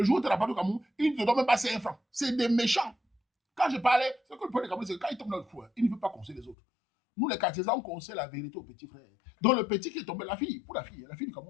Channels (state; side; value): drops out; right; at 6.6 s